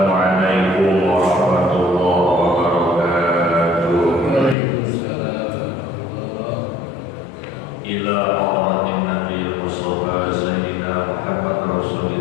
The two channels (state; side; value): drops out; right; at 4.5 s